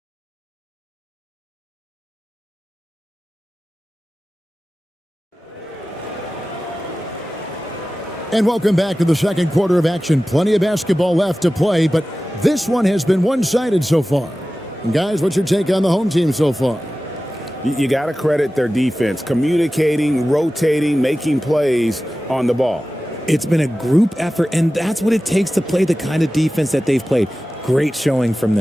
And welcome back to the second quarter of action. Plenty of basketball left to play, but this one has been one-sided so far. And guys, what's your take on the home team so far? You got to credit their defense, communicating, rotating, making plays on the ball. It's been a group effort, and that's what it takes to play the kind of defense that they've played. Great showing from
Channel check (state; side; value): normal; both; correlation 0.95